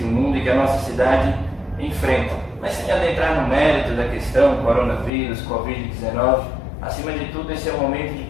o mundo e que a nossa cidade enfrentam. Mas sem adentrar no mérito da questão, coronavírus, Covid-19, acima de tudo, esse é um momento de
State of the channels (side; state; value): right; drops out; at 5.1 s